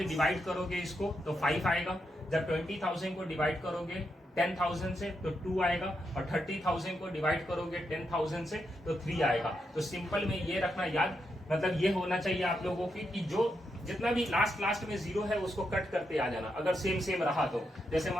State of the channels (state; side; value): normal; both; correlation 0.83